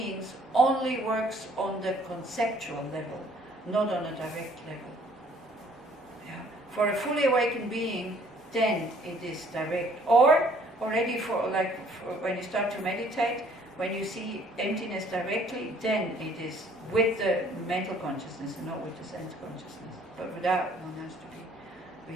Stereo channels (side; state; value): both; normal; correlation 0.59